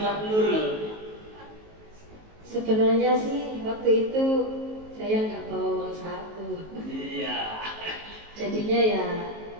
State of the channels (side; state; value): left; late; 19 ms